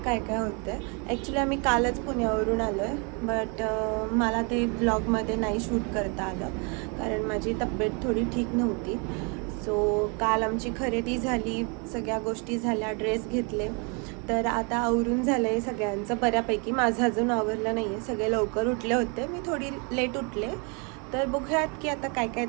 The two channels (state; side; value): quieter; left; 34.4 dB